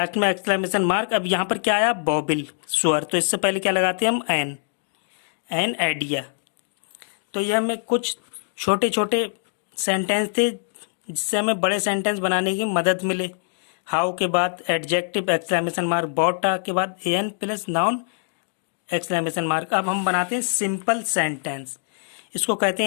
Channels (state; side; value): silent; right; digital silence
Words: में एक्सक्लेमेशन मार्क। अब यहाँ पर क्या आया बॉबिल स्वर, तो इससे पहले क्या लगाते हैं हम एन आइडिया। तो यह हमें कुछ छोटे छोटे सेंटेंस थे जिससे हमें बड़े सेंटेंस बनाने की मदद मिले। हाउ के बाद एडजेक्टिव एक्सक्लेमेशन मार्क, बॉटा के बाद an plus noun exclamation mark. अब हम बनाते हैं सिंपल सेंटेंस, इसको कहते